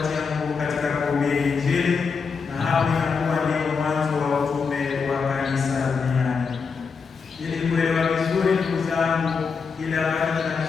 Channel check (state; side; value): quieter; right; 5.4 dB